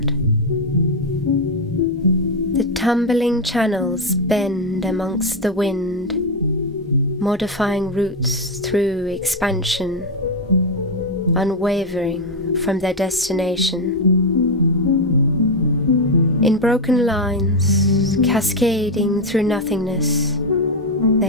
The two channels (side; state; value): both; normal; correlation 0.06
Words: The tumbling channels bend amongst the wind, modifying routes through expansion, unwavering from their destination. In broken lines, cascading through nothingness,